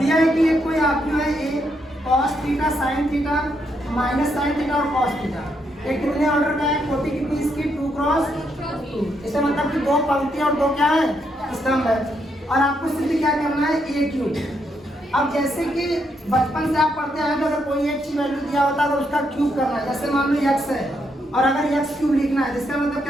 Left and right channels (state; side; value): normal; both; correlation 0.78